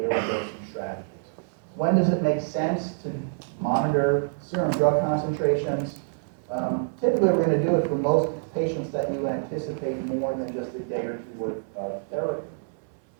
dosing strategies. When does it make sense to monitor serum drug concentrations? Typically, we're going to do it for most patients that you anticipate more than just a day or 2 worth of therapy.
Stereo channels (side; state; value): left; silent; 61 dB below the other